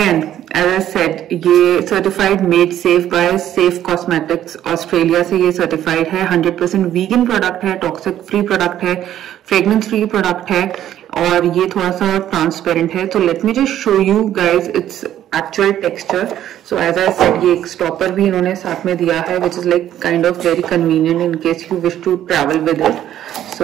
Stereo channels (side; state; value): left; quieter; 11.6 dB